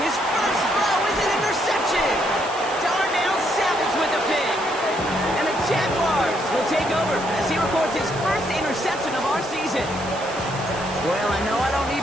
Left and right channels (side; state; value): right; noise; hiss, 16 dB below the sound